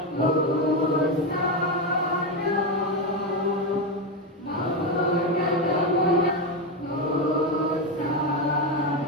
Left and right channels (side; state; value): both; normal; correlation 0.11